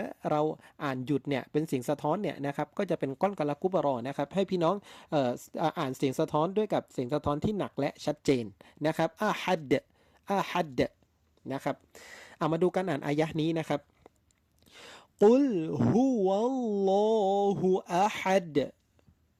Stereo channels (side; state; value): both; identical; correlation 1.00